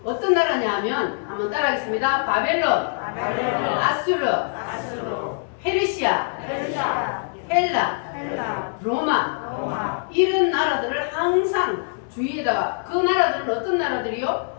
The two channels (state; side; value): silent; right; digital silence